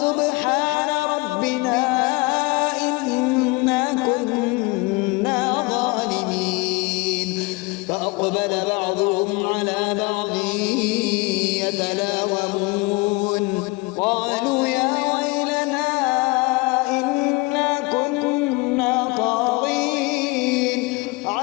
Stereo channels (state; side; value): quieter; right; 25.4 dB